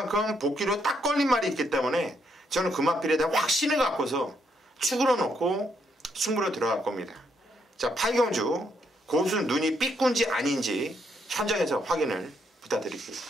복귀로 딱 걸린 말이 있기 때문에 저는 금화필에 대한 확신을 갖고서 축으로 놓고 승부로 들어갈 겁니다. 자, 8경주 고수 눈이 삐꾼지 아닌지 현장에서 확인을 부탁드릴게요.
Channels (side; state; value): both; normal; correlation 0.75